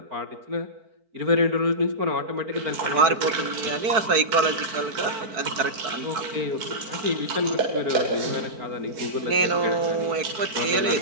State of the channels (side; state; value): left; late; 4.6 ms